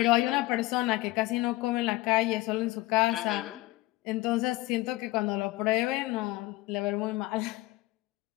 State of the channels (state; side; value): quieter; right; 19.0 dB